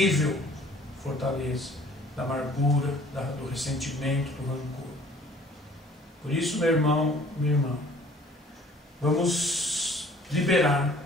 fortaleza da amargura, do ressentimento, do rancor. Por isso, meu irmão, minha irmã, vamos liberar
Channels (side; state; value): both; normal; correlation 0.54